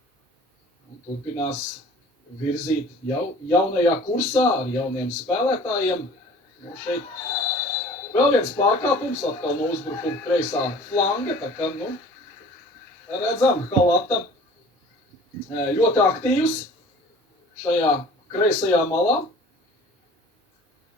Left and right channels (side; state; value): both; normal; correlation 0.47